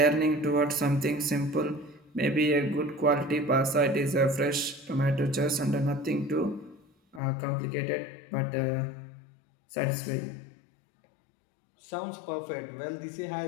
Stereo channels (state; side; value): drops out; right; at 7.2 s